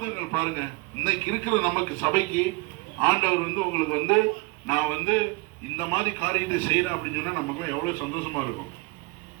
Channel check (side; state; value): left; quieter; 25.4 dB